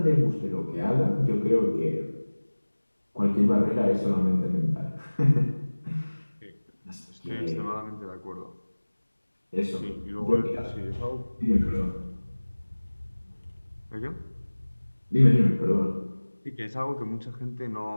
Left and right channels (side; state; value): both; inverted; correlation -1.00